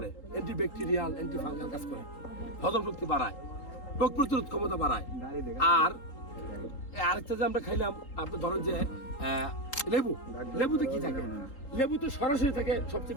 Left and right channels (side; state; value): right; late; 3.8 ms